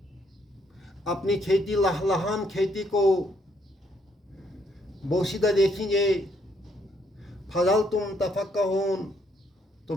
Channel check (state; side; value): normal; both; correlation 0.71